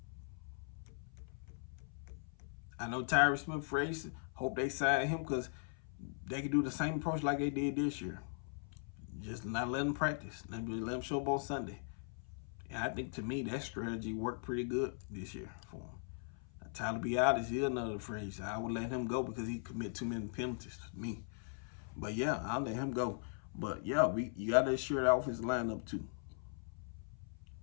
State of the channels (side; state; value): right; silent; 51 dB below the other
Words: I know Tyree Smith phrase, hope they sign him because they can do the same approach like they did this year. Just not let them practice. Let them show up on Sunday. And I think, to me, that strategy worked pretty good this year for him. Now, Tyler Biadasz is another phrase. I would let him go because he commit too many penalties to me. But, yeah, I'll let him go. But, yeah, you got to assure the offensive lineup, too.